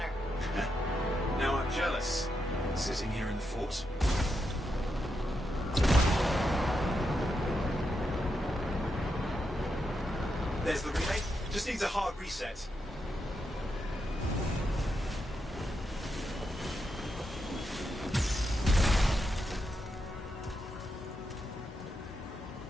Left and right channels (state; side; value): normal; both; correlation 0.84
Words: Now I'm jealous. Sitting here in the fort. There's the relay. Just needs a hard reset.